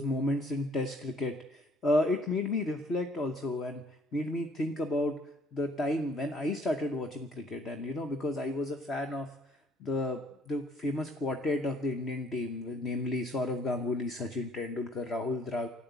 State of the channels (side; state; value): both; normal; correlation 0.61